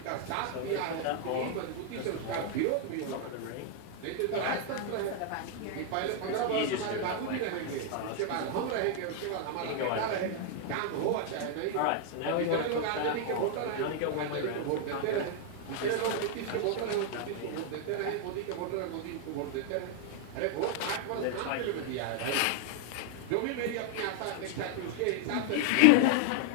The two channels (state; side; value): different; both; correlation 0.00